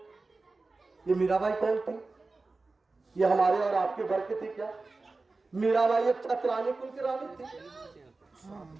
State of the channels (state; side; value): quieter; left; 3.6 dB